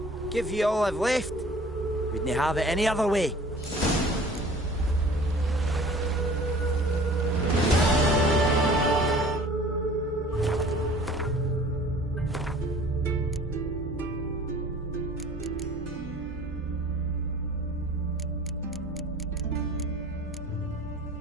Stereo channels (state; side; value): normal; both; correlation 0.48